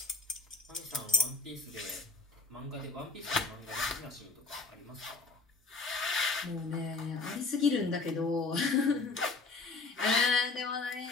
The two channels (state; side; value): quieter; right; 3.8 dB